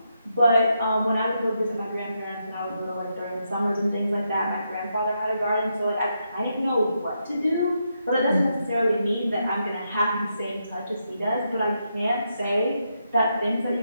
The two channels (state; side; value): inverted; both; correlation -0.82